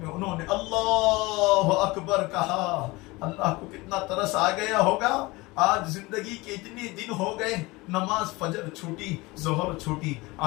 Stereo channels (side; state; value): right; quieter; 22.4 dB